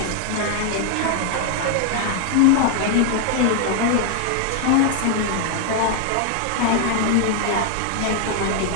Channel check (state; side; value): different; both; correlation 0.00